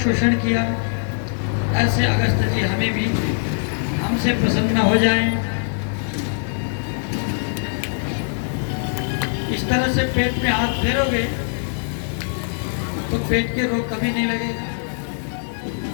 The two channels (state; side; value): silent; right; digital silence